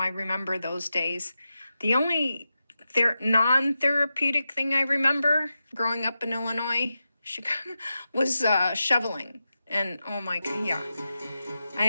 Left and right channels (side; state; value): both; inverted; correlation -0.90